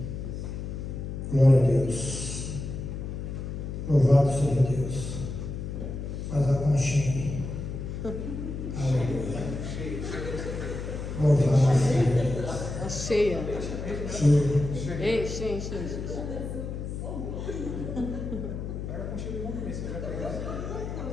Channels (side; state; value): left; noise; hum, 6 dB below the sound